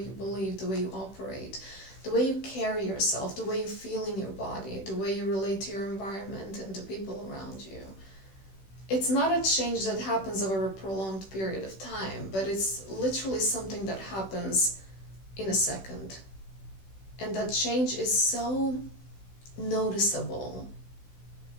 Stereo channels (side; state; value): right; late; 16 ms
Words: believe, the way you operate, the way you carry yourself, the way you feel in your body, the way you relate to your environment and to people around you. It's not a change that happens over a prolonged period of time, but it's literally something that happens in a second. And that change is so noticeable,